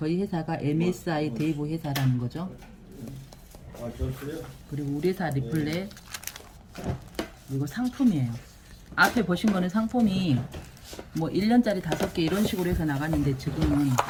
회사가 MSI 대부 회사라는 거죠. 그리고 우리 회사 리플렛, 이거 상품이에요. 앞에 보신 거는 상품이 뭐 1년짜리 5개 이런 식으로 해서 나갔는데, 지금은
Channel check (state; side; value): identical; both; correlation 1.00